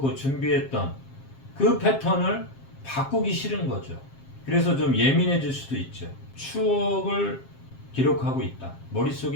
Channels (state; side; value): late; right; 7.5 ms